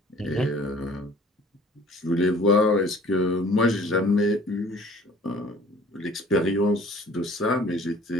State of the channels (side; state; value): both; normal; correlation 0.51